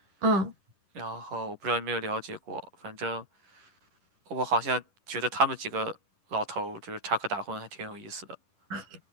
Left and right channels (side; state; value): left; late; 10 ms